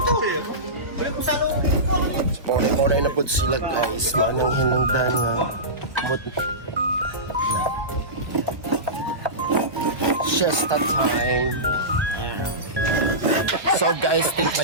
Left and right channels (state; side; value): late; left; 1.3 ms